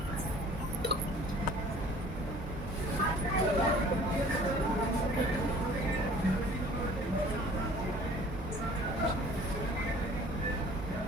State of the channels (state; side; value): normal; both; correlation 0.50